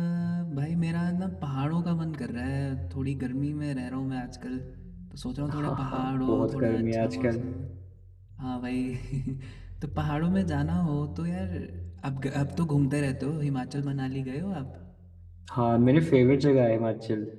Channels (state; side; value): identical; both; correlation 1.00